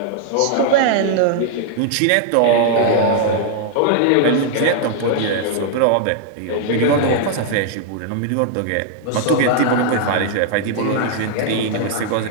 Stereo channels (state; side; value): different; both; correlation -0.01